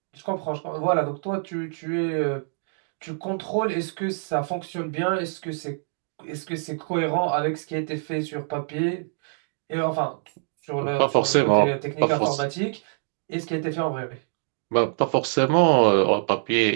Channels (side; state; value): left; silent; digital silence